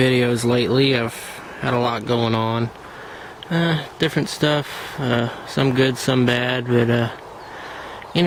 lately. I've had a lot going on. Different stuff, some good, some bad, but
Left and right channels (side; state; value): both; identical; correlation 1.00